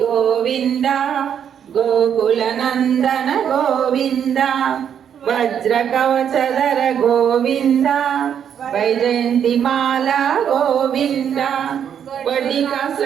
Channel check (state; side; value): quieter; left; 8.6 dB